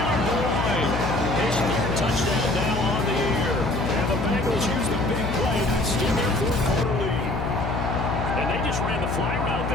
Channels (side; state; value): left; noise; hum, 2 dB below the sound